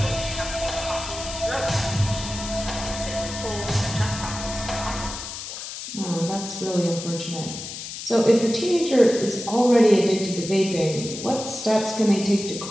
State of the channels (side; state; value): left; noise; hiss, 9 dB below the sound